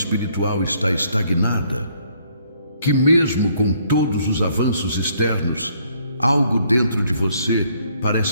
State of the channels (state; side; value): inverted; both; correlation -0.66